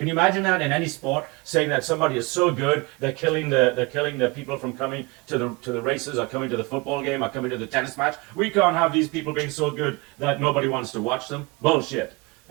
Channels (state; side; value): quieter; left; 25.7 dB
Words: you imagine that in any sport, saying that somebody is so good they're killing the people from coming to the races or coming to the football game or coming to the tennis match? We can't have these people being so good that nobody wants to watch them. Bullshit.